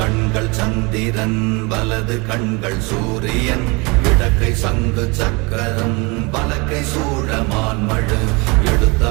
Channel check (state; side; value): quieter; left; 28.0 dB